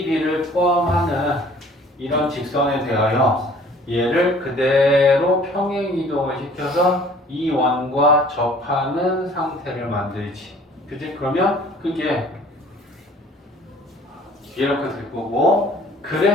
B를 포함하는 이런 직선에 대하여 얘를 그대로 평행 이동을 시켜서 이 원과 접하는 상태를 만들지. 그지? 그러면 그게 이렇게 될 거고,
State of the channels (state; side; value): normal; both; correlation 0.52